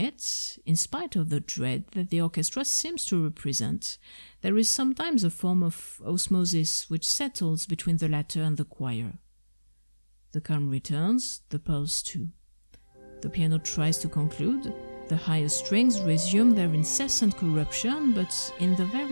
in spite of the dread that the orchestra seems to represent, there is sometimes a form of osmosis which settles between the latter and the choir. The calm returns, the pulse too. The piano tries to conclude. The higher strings resume their incessant corruption, but in the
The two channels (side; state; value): both; inverted; correlation -1.00